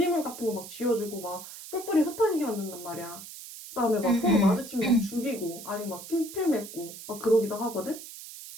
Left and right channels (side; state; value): right; noise; hiss, 13 dB below the sound